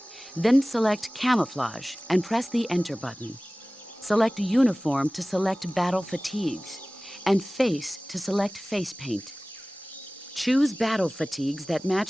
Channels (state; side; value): normal; both; correlation 0.98